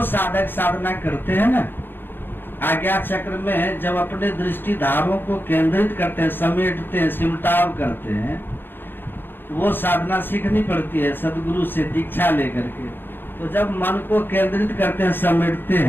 साधक साधना करते हैं ना, आज्ञा चक्र में जब अपने दृष्टि धारों को केंद्रित करते हैं, समेटते हैं, सिमटाव करते हैं, वो साधना सीखनी पड़ती है सदगुरु से दीक्षा लेकर के। तो जब मन को केंद्रित करते हैं, समेटते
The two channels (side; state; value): right; late; 0.10 ms